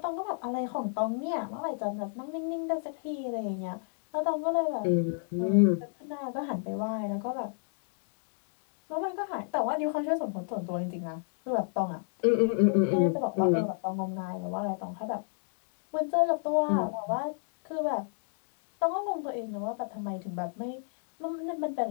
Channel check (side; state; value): right; silent; digital silence